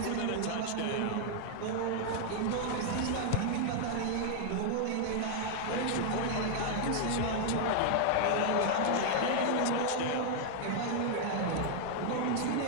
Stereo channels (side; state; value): both; different; correlation 0.00